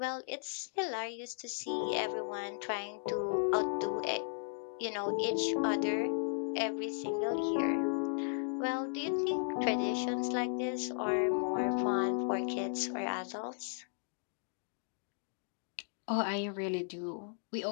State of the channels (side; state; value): right; silent; digital silence